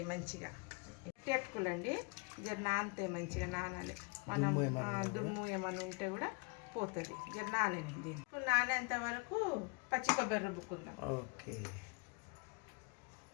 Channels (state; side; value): quieter; right; 31.6 dB